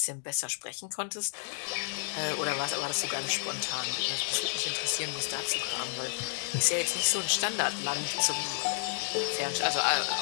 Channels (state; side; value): silent; right; digital silence